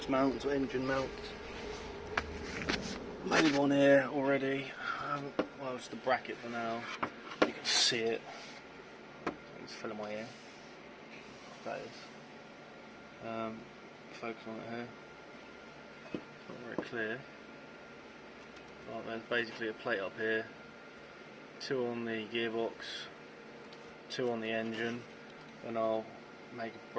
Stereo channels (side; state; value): both; identical; correlation 1.00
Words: mounts or engine mounts. Made one here already. Well, it's the bracket for now. You can see it. It's filling my ear. That is. Focus on it here. It's not very clear. But there's basically a plate up here. 2 on the gearbox, 2 on the engine, and I'll make a